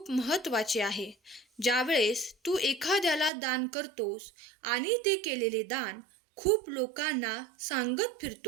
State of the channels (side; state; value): left; drops out; at 3.3 s